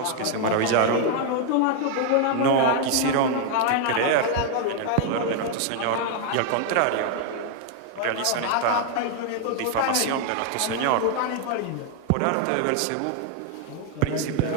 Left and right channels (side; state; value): both; different; correlation 0.00